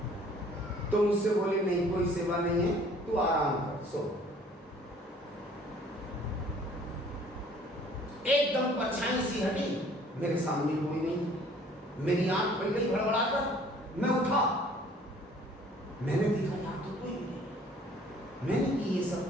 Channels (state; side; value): normal; both; correlation 0.54